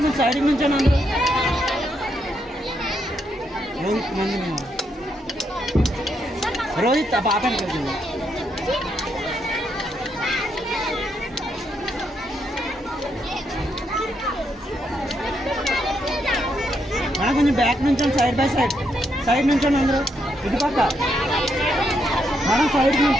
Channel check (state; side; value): normal; both; correlation 0.78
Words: కొంచెం సైడ్కి నుంచండి అందరూ. రోహిత్ మంది రోహిత్ పాపని కలిసింది. మేడం కొంచెం బ్యాక్ నుంచండి, సైడ్ బై సైడ్. సైడ్ నుంచండి అందరూ. ఇటు పక్క మేడం సైడ్కి